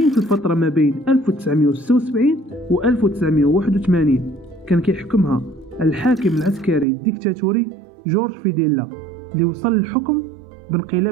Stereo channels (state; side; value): drops out; left; at 6.9 s